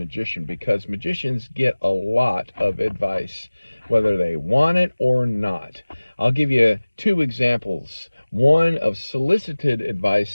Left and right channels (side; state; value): both; inverted; correlation -1.00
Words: because magicians get a lot of advice, whether they want it or not. I'll give you two examples, one of solicited